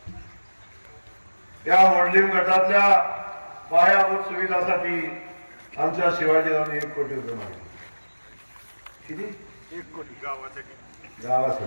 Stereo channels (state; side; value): inverted; both; correlation -1.00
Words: या मोडलीम गटातल्या पायाभूत सुविधासाठी आमच्या शिवाजीरावांनी 1 कोटी रुपये मागितले. किती? 1 कोटी गावासाठी.